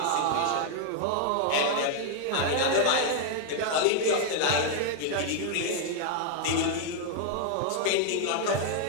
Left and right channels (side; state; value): both; different; correlation 0.00